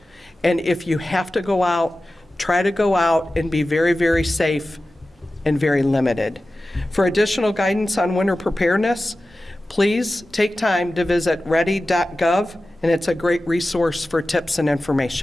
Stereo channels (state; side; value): normal; both; correlation 0.95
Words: and if you have to go out, try to go out and be very, very safe and very limited. For additional guidance on winter preparedness, please take time to visit ready.gov, and it's a great resource for tips and